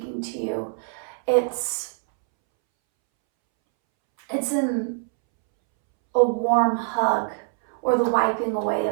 to you. It's in a warm hug or the wiping away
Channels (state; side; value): silent; left; 63 dB below the other